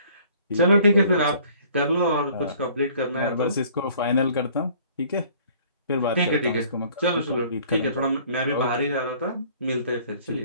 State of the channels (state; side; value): inverted; both; correlation -0.55